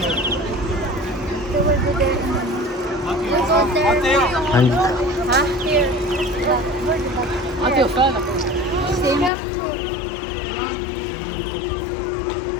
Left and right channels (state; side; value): drops out; right; at 9.3 s